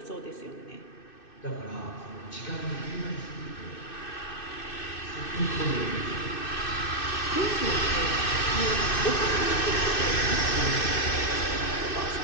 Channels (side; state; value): right; late; 2.6 ms